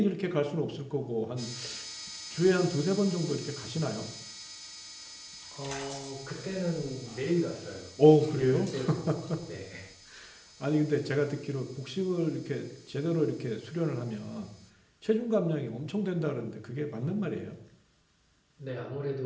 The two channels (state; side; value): identical; both; correlation 1.00